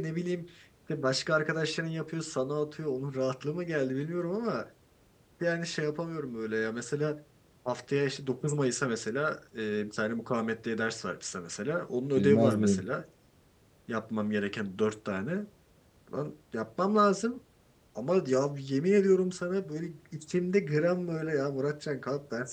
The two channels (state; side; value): identical; both; correlation 1.00